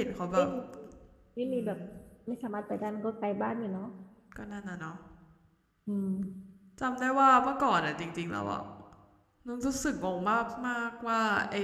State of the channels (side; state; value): both; identical; correlation 1.00